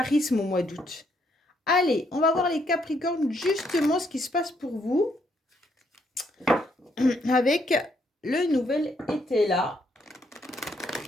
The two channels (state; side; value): normal; both; correlation 0.73